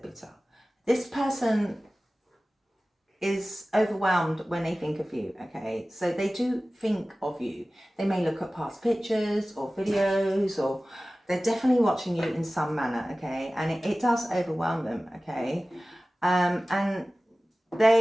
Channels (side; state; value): both; normal; correlation 0.97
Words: This person is overwhelmed when they think of you, okay? So they do think of you. They may look at past pictures or videos, or they're definitely watching you in some manner, okay? And it does overwhelm them, okay? And